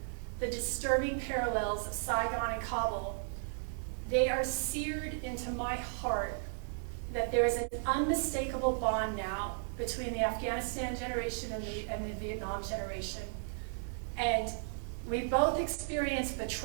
the disturbing parallels of Saigon and Kabul, they are seared into my heart, that there is an unmistakable bond now between the Afghanistan generation and the Vietnam generation. And we both experienced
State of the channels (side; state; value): left; silent; digital silence